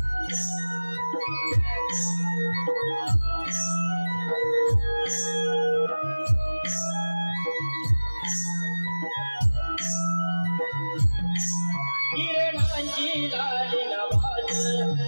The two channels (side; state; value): both; inverted; correlation -1.00